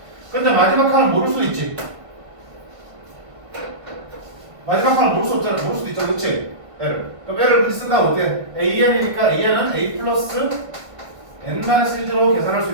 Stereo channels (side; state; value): left; late; 1.5 ms